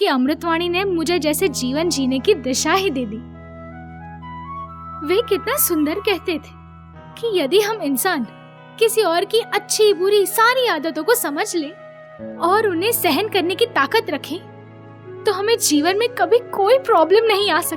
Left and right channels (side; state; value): both; identical; correlation 1.00